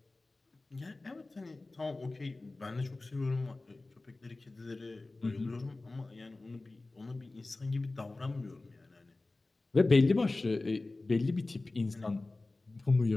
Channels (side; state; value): right; quieter; 3.1 dB